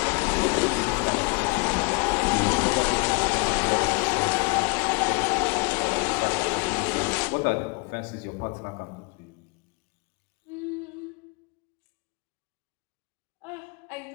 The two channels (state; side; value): quieter; right; 31.0 dB